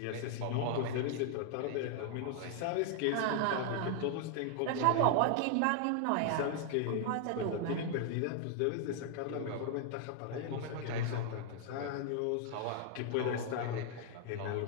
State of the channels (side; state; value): both; different; correlation 0.00